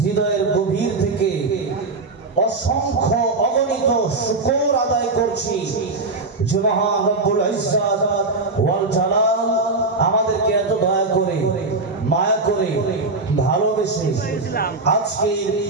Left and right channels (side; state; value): left; quieter; 3.5 dB